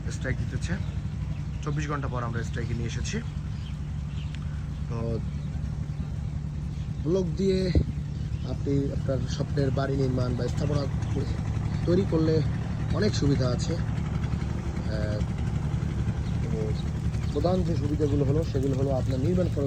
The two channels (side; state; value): both; identical; correlation 1.00